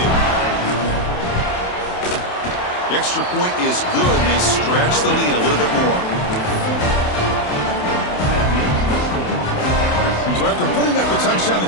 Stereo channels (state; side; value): late; right; 28 ms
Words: The extra point is good, and they stretch the lead a little bit more. So after putting up the touchdown, the